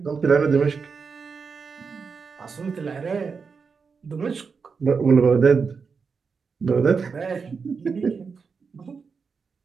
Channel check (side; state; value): left; quieter; 5.4 dB